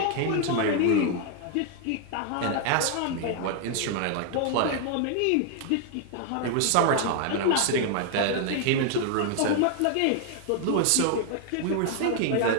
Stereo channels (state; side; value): different; both; correlation 0.00